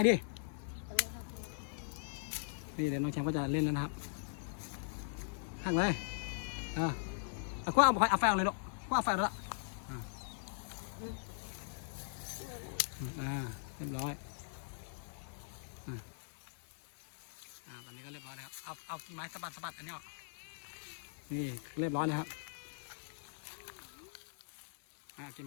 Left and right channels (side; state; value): right; silent; digital silence